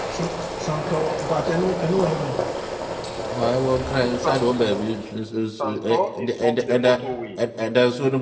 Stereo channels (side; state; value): both; identical; correlation 1.00